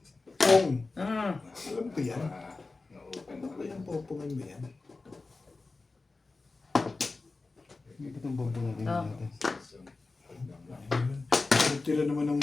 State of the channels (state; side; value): quieter; right; 3.6 dB